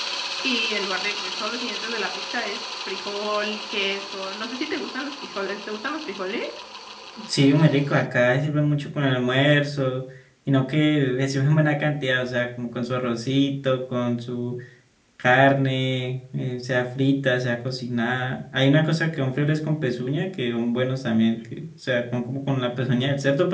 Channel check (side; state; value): both; identical; correlation 1.00